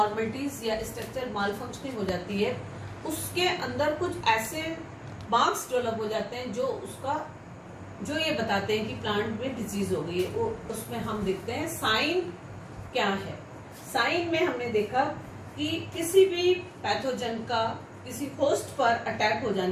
या स्ट्रक्चर मालफंक्शनिंग हो जाती है, उसके अंदर कुछ ऐसे मार्क्स डेवलप हो जाते हैं जो ये बताते हैं कि प्लांट में डिजीज हो गई है। वो उसमें हम देखते हैं साइन क्या है। साइन में हमने देखा कि किसी भी पैथोजन का किसी होस्ट पर अटैक हो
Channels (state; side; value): identical; both; correlation 1.00